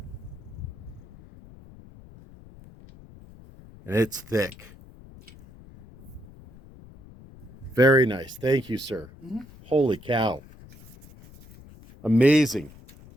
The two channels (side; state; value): left; noise; rumble, 21 dB below the sound